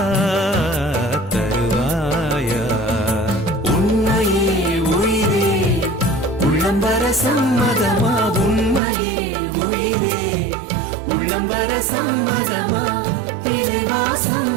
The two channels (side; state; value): left; drops out; at 8.8 s